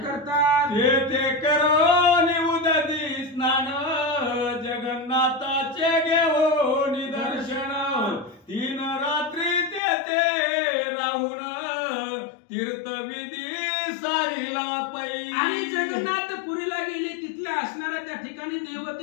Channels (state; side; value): drops out; right; at 9.8 s